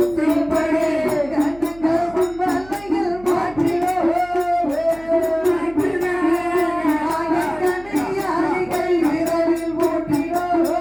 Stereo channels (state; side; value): noise; right; hum, 22 dB below the sound